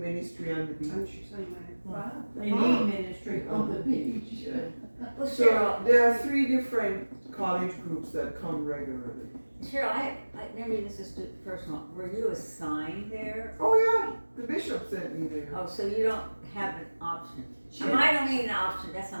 on the And beach. she said, Wow. They need ministry on the beach. Well, So Cheryl, there are 3 different college groups that come regularly. Cheryl, maybe this is too personal. Were you assigned there? Oh yeah, the bishop sent me there. Oh, so you don't have an option. I don't mean an option, that's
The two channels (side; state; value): both; inverted; correlation -1.00